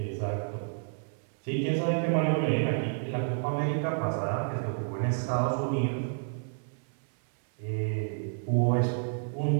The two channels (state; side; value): silent; left; 58 dB below the other